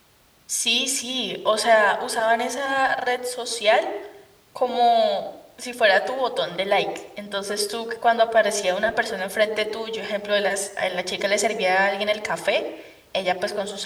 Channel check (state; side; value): identical; both; correlation 1.00